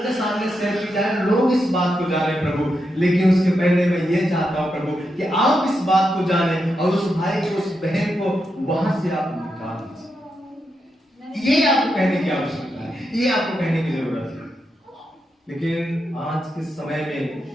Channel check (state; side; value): normal; both; correlation 0.85